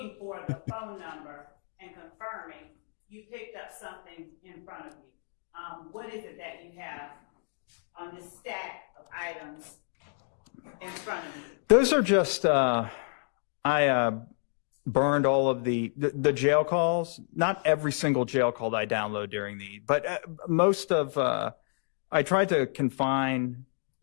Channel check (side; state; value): right; silent; 58 dB below the other